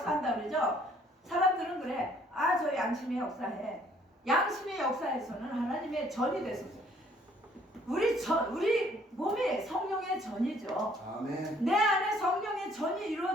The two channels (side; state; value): both; normal; correlation 0.61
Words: 그러죠. 사람들은 그래. 아, 저 양심의 역사해. 양심의 역사에서는 하나님의 전이 됐었어요. 우리 몸이 성령의 전이죠. 아멘. 내 안에 성령의 전이